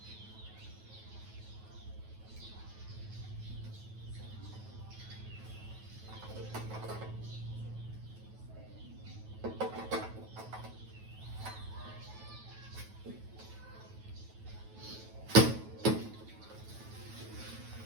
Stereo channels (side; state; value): left; late; 9.2 ms